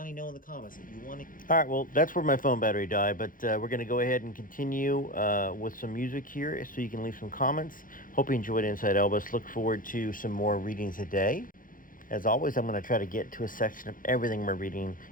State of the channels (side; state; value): right; late; 0.40 ms